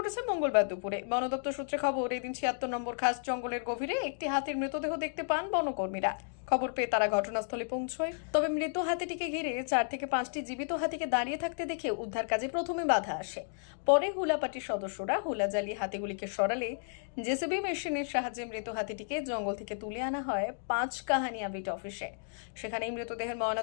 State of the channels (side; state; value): right; silent; digital silence